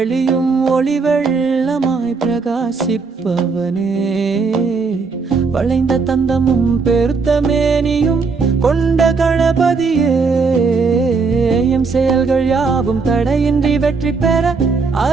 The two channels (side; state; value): left; quieter; 4.7 dB